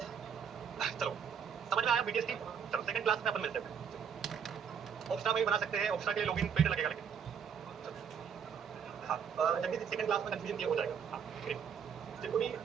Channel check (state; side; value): quieter; left; 7.3 dB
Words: चलो समझ में आया बीटीएस की। चलो सेकंड क्लास में अपन मिलते हैं। ऑप्शा में भी बना सकते हैं, ऑप्शा के लिए लॉगिन पेड लगेगा, लेकिन हाँ जल्दी से सेकंड क्लास में कंफ्यूजन क्लियर हो जाएगा। हाँ ग्रेट, जिनको भी